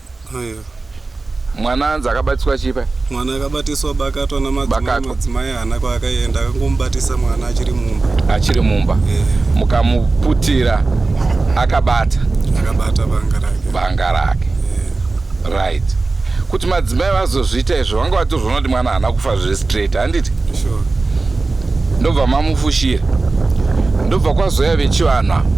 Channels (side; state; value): left; quieter; 3.6 dB